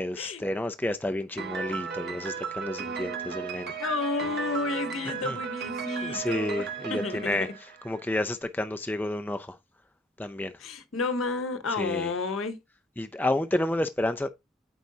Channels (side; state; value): both; normal; correlation 0.58